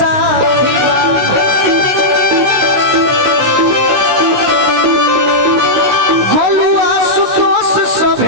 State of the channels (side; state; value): left; late; 16 ms